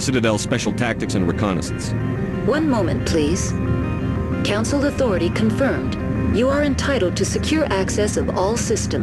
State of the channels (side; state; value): both; identical; correlation 1.00